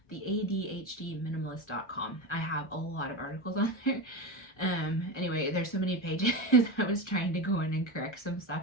theadhdminimalist.com. I have a lot of articles on there. Anyway, there's so many pages. I was trying to go in and correct some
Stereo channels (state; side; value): late; right; 1.3 ms